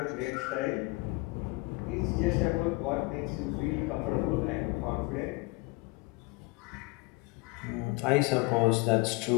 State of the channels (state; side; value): quieter; right; 25.0 dB